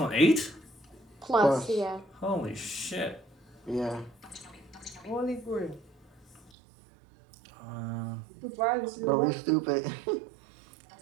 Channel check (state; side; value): drops out; left; at 6.5 s